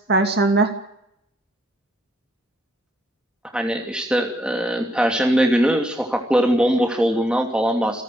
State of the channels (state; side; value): normal; both; correlation 0.72